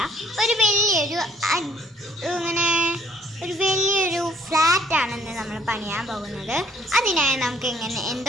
ഒരു വലിയൊരു ഫ്ലാറ്റാണെന്ന് നമ്മൾ പണിയാൻ പോകുന്നത്. അതിനായി നമുക്ക്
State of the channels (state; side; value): normal; both; correlation 0.63